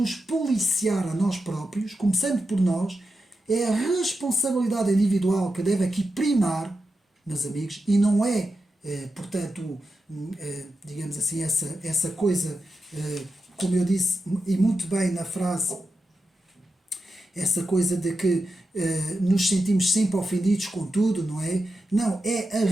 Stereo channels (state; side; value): normal; both; correlation 0.90